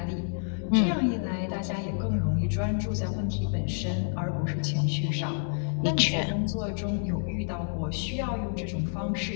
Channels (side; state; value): right; silent; digital silence